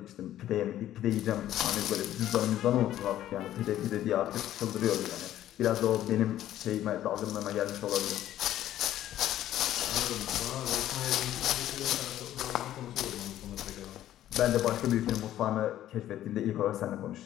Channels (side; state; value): right; quieter; 12.6 dB